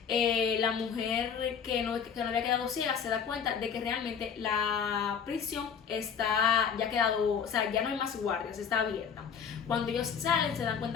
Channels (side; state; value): right; quieter; 7.0 dB